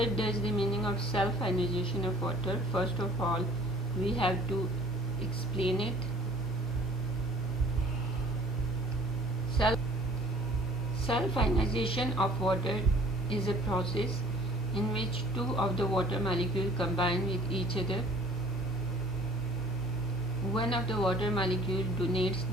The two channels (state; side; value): normal; both; correlation 0.52